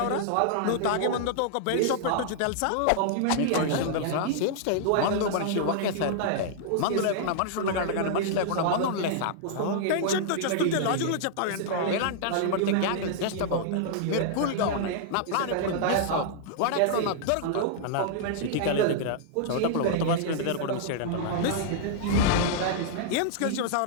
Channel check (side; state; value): both; different; correlation -0.01